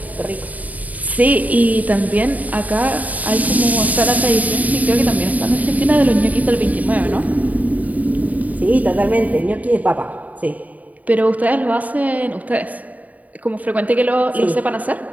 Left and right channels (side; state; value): left; late; 0.074 ms